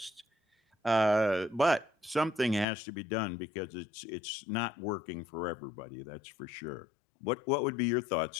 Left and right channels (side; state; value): right; drops out; at 2.7 s